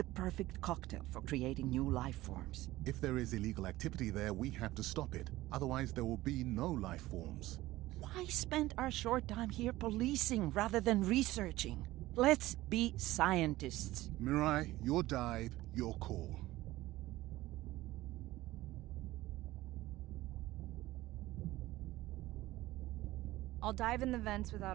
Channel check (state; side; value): quieter; left; 17.2 dB